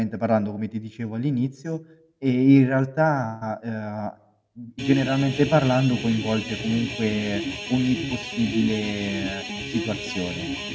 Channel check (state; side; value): identical; both; correlation 1.00